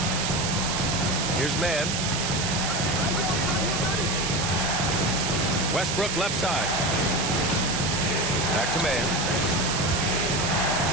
Here's Mann. Westbrook left side. Back to Mann.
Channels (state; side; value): noise; right; hiss, 1 dB below the sound